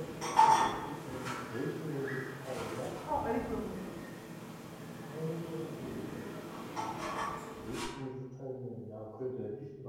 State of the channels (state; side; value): identical; both; correlation 1.00